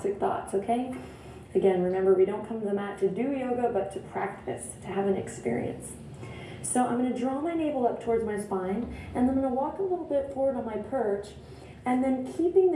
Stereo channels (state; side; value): identical; both; correlation 1.00